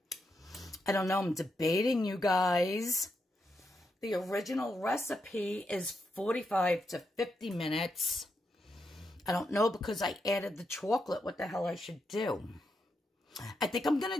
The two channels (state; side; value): normal; both; correlation 0.83